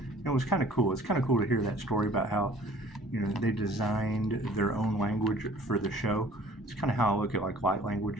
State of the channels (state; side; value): normal; both; correlation 0.52